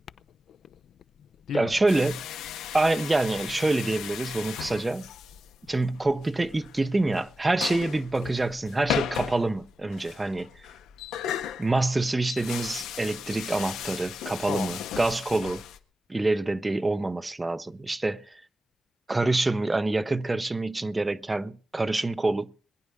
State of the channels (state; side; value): normal; both; correlation 0.93